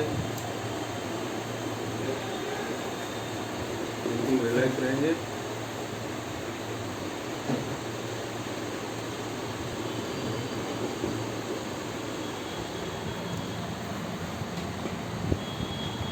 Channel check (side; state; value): both; identical; correlation 1.00